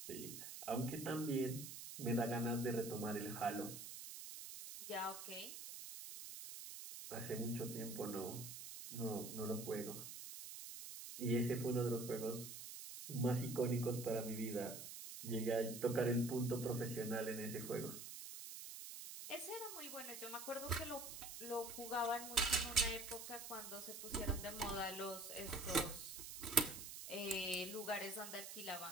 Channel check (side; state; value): right; noise; hiss, 9 dB below the sound